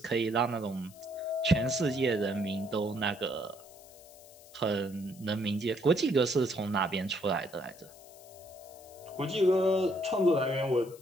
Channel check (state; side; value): noise; left; hiss, 22 dB below the sound